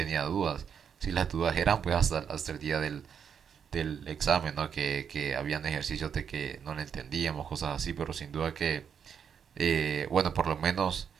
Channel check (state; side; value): quieter; left; 7.4 dB